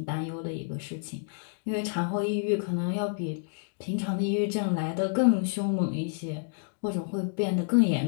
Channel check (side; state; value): right; silent; digital silence